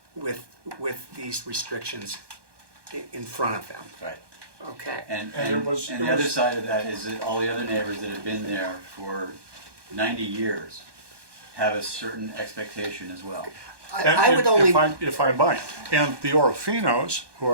with these restrictions in front of them. Right. Okay. And, And and, it was- and it the other was- side of that is that all the other neighbors that have been there for 90 years have a certain expectation as well. And I would only, if I might, and the Orofinos, who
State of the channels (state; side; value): late; left; 1.2 ms